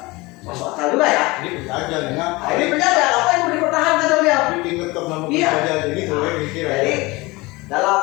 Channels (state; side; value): quieter; right; 23.0 dB